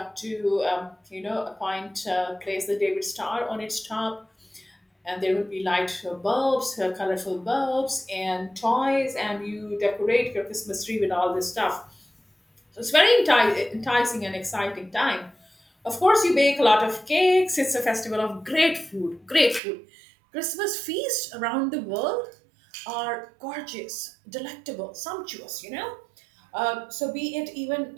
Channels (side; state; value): left; drops out; at 19.6 s